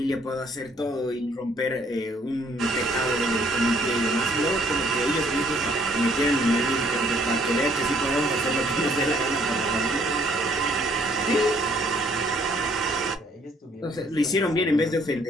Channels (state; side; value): normal; both; correlation 0.64